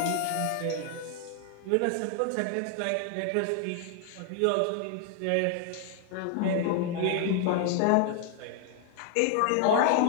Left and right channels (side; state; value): both; different; correlation 0.00